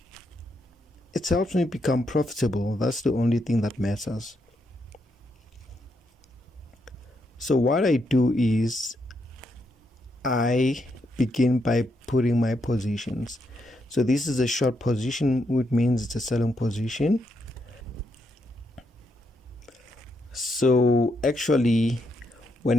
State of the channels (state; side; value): normal; both; correlation 0.79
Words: it helps me become profitable. That's the only thing that matters. So what I do is I begin by putting my positions. So this is a short position, which means it's a selling position. So actually,